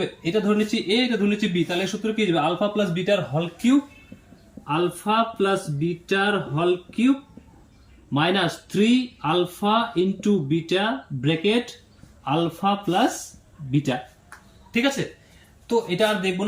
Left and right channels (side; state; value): both; identical; correlation 1.00